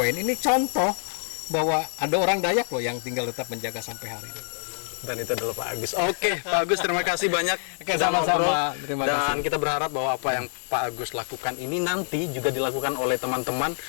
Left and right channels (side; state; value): right; silent; digital silence